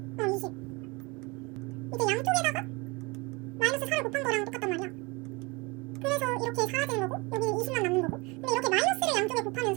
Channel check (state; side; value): quieter; left; 26.6 dB